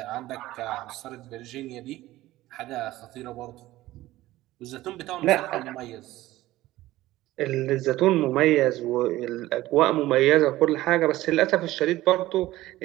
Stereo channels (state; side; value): quieter; left; 16.6 dB